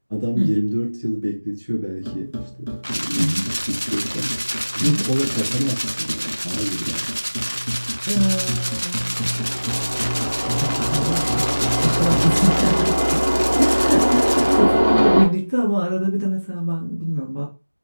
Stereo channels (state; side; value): inverted; both; correlation -1.00